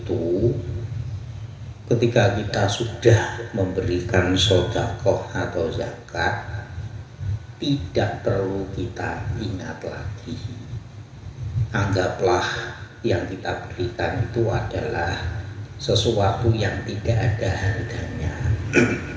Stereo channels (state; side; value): identical; both; correlation 1.00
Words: ketika kita sudah memberikan sedekah atau zakat, tidak perlu kita ingat lagi. Anggaplah yang kita berikan itu adalah sesuatu yang tidak ada harganya.